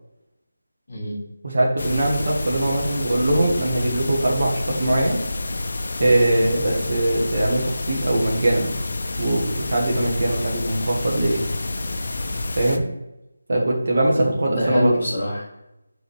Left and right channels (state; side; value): inverted; both; correlation -0.92